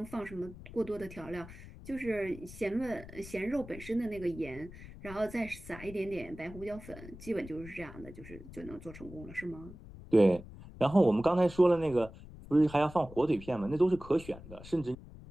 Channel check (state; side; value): noise; left; rumble, 16 dB below the sound